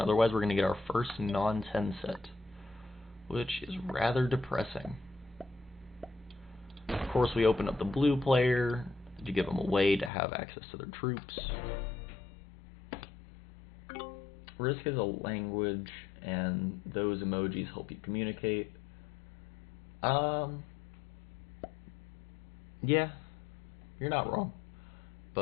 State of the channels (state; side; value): drops out; right; at 10.1 s